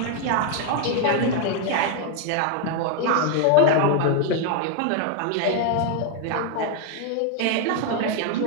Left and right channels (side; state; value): both; different; correlation 0.01